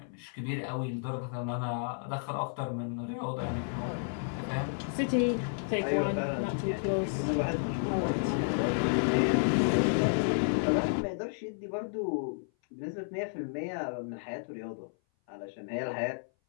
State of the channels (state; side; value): silent; right; 57 dB below the other